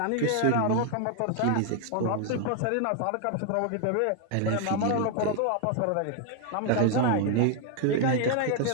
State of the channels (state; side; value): different; both; correlation 0.00